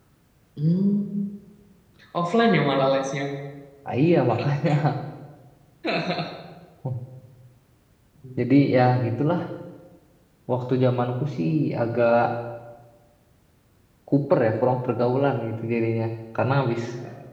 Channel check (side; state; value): both; identical; correlation 1.00